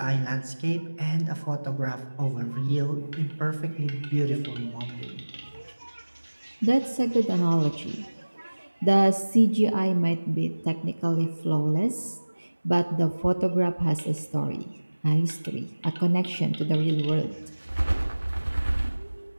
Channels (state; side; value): inverted; both; correlation -1.00